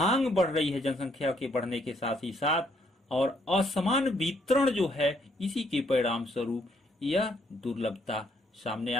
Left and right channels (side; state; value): both; normal; correlation 0.70